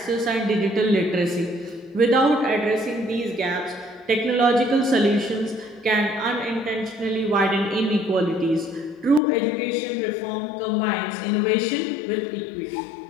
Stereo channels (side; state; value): right; drops out; at 9.2 s